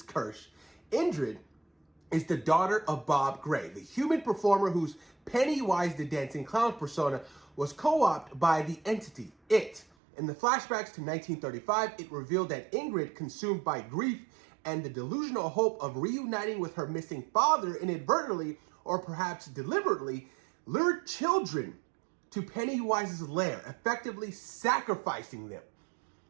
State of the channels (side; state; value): left; drops out; at 9.9 s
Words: Kersh, Ingrid, is the daughter of Bob Gray, the human performer whose Pennywise the Dancing Clown persona was co-opted by the entity, It. In the flashbacks to 1935, it revealed that Ingrid, consumed by grief and the delusional hope of reuniting with her missing father, inadvertently, or perhaps deliberately, lured children to Pennywise's lair, effectively sacrificing them.